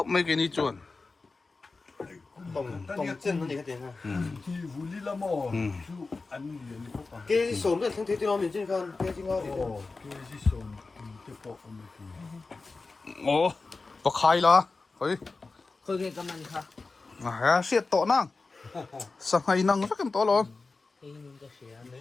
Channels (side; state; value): right; quieter; 3.9 dB